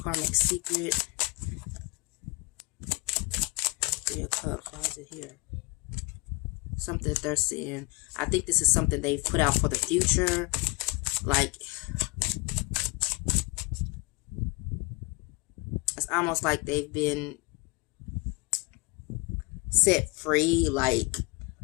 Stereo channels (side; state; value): right; quieter; 27.5 dB